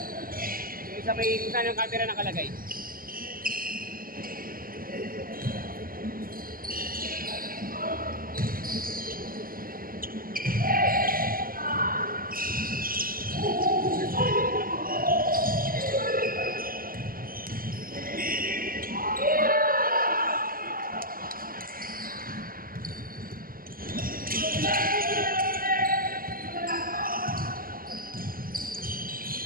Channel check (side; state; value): left; late; 0.42 ms